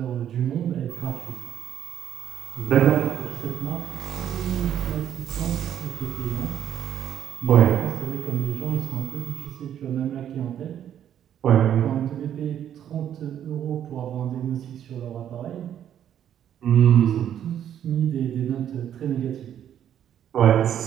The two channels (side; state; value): left; quieter; 10.1 dB